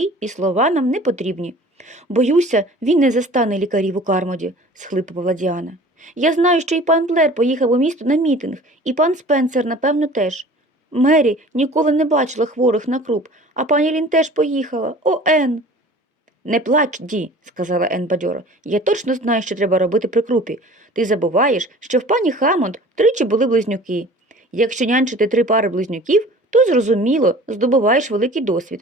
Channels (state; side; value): normal; both; correlation 0.45